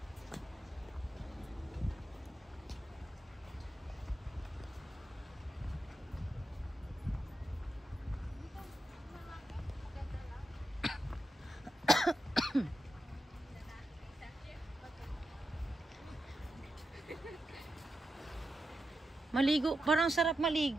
Maligo. Parang sarap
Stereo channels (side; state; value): both; normal; correlation 0.88